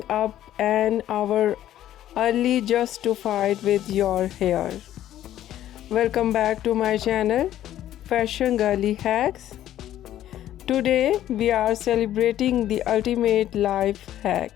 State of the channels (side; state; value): right; quieter; 12.4 dB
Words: up an hour early just to fight with your hair? Welcome back to my channel, Fashion Girly Hacks. Today, we are celebrating the ultimate life hack,